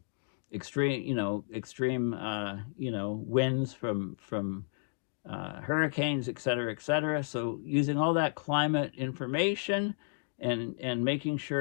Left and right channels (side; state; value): right; silent; digital silence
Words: extreme winds from hurricanes, et cetera. So using all that climate information and making